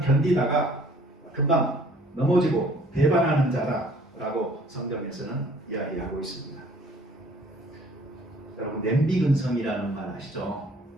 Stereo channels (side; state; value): both; normal; correlation 0.56